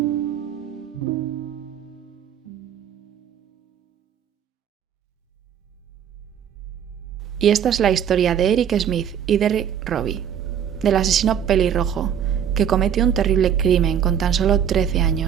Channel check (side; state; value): left; quieter; 8.8 dB